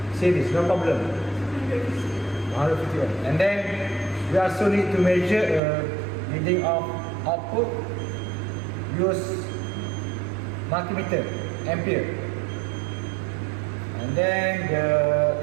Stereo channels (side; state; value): left; drops out; at 5.6 s